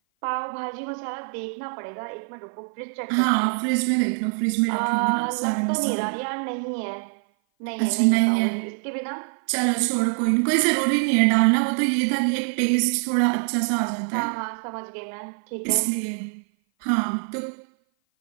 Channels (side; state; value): left; silent; 56 dB below the other